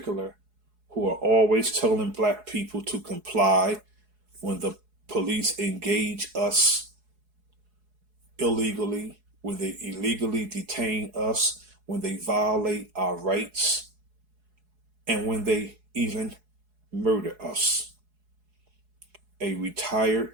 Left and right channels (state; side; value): late; left; 4.7 ms